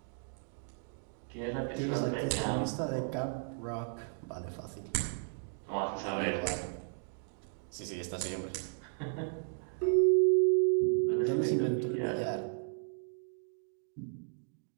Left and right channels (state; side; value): silent; left; 55 dB below the other